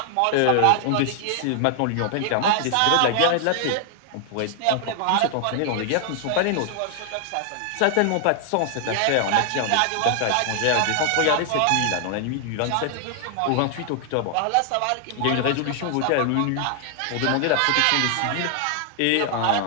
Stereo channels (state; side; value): different; both; correlation 0.00